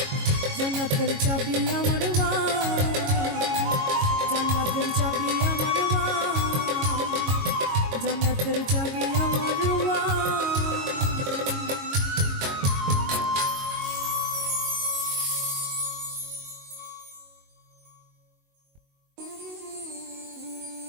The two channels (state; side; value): late; left; 22 ms